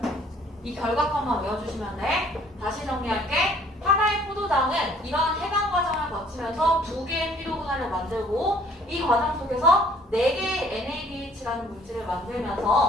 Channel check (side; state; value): both; normal; correlation 0.58